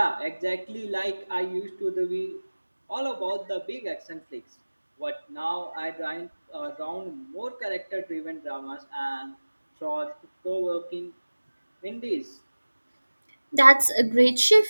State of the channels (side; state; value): both; inverted; correlation -1.00